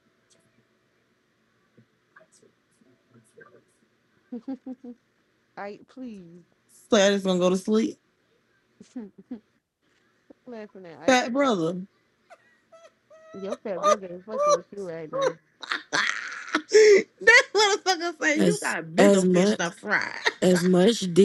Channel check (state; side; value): identical; both; correlation 1.00